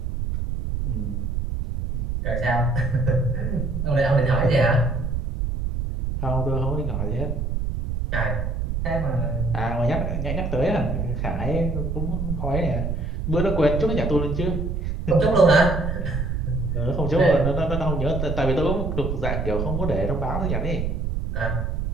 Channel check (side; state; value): right; noise; rumble, 2 dB below the sound